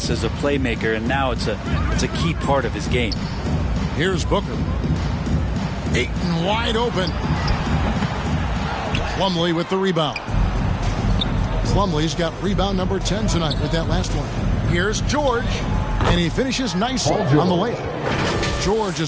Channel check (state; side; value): identical; both; correlation 1.00